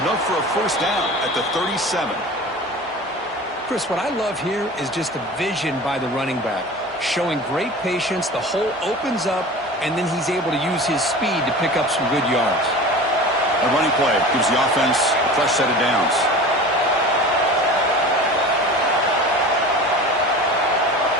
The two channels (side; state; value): both; normal; correlation 0.36